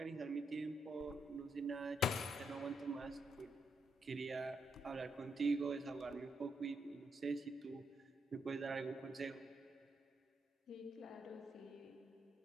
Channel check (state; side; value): normal; both; correlation 0.79